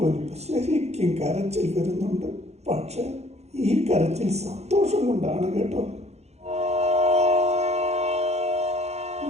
ശരിക്കും കരച്ചിൽ വരുന്നുണ്ട്. പക്ഷെ ഈ കരച്ചിൽ സന്തോഷം കൊണ്ടാണ് കേട്ടോ.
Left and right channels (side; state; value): left; late; 0.31 ms